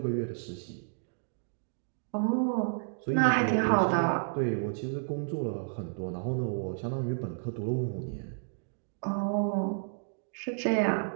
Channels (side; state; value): left; silent; digital silence